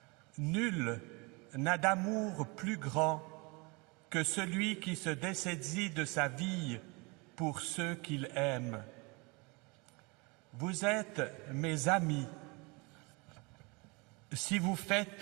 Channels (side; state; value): left; quieter; 28.3 dB